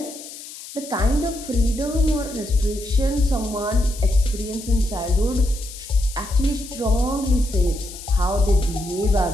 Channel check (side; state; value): left; noise; hiss, 14 dB below the sound